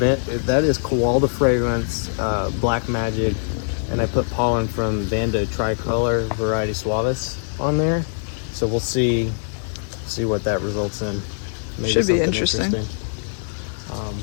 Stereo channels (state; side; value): silent; right; digital silence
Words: is Koalda Fragrance, Black Magic, and I put pollen from Vanda Tricolor Variety Suavis on there. So we'll see what that results in. Maybe Should be something interesting.